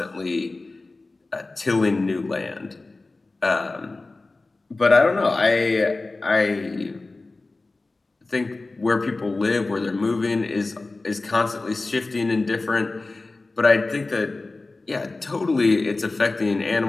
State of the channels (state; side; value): quieter; right; 3.3 dB